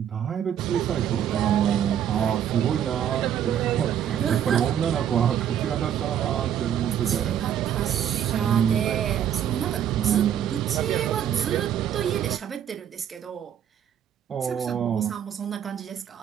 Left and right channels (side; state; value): left; quieter; 9.6 dB